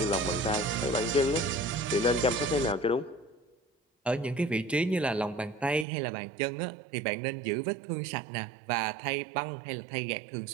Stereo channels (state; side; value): drops out; left; at 5.9 s